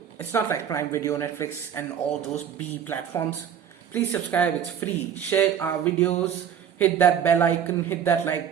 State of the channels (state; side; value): quieter; left; 8.6 dB